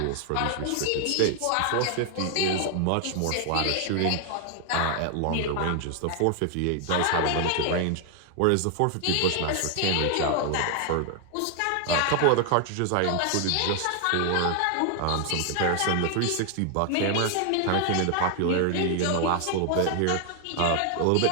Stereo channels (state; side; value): different; both; correlation 0.00